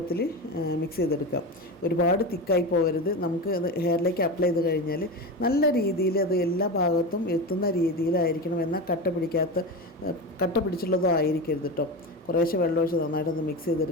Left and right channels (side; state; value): both; normal; correlation 0.22